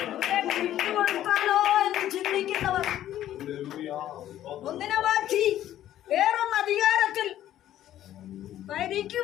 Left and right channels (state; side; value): quieter; right; 12.4 dB